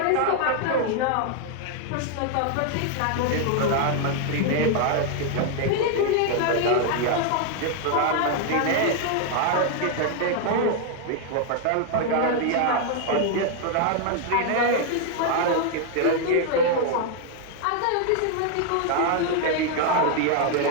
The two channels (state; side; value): different; both; correlation 0.00